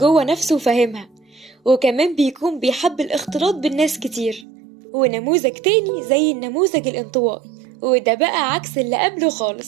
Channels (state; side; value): drops out; left; at 4.5 s